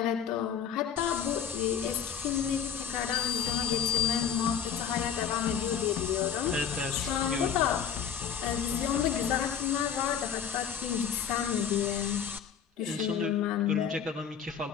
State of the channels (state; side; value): quieter; right; 7.9 dB